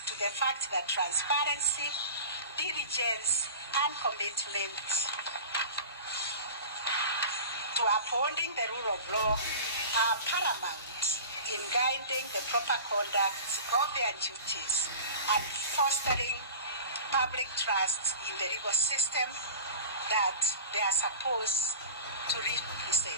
to the fact that transparency, diligence, and commitment to upholding the rule of law are paramount in guiding the proper conduct of their duties and fostering public trust in the legal system that they are supposed to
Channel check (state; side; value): inverted; both; correlation -0.37